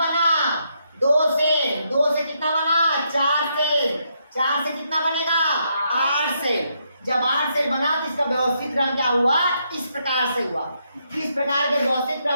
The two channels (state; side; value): inverted; both; correlation -0.77